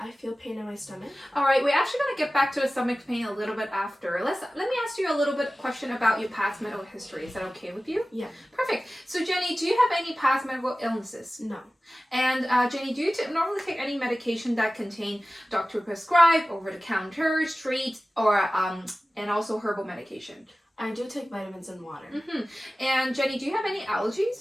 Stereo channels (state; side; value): normal; both; correlation 0.96